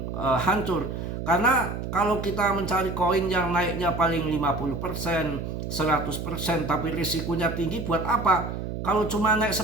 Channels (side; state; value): right; noise; hum, 5 dB below the sound